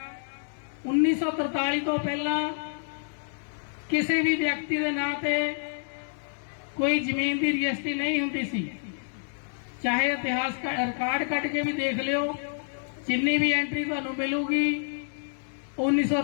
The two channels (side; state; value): right; silent; digital silence